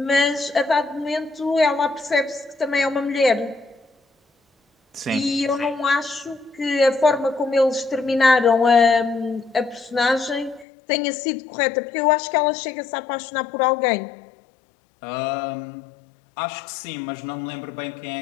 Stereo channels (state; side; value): drops out; right; at 10.7 s